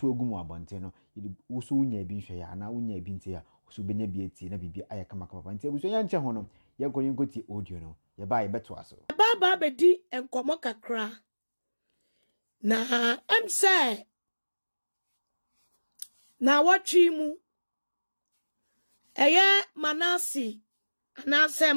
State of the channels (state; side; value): inverted; both; correlation -1.00